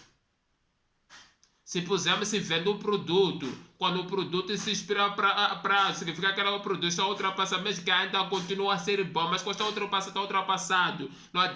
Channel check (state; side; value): identical; both; correlation 1.00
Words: Se pusermos se vende um produto, quando o produto se expira para significa que o produto está ultrapassado, mesmo que ainda continua a ser bom, mas quando está ultrapassado, não